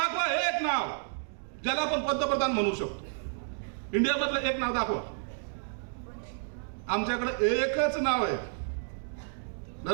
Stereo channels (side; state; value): left; silent; digital silence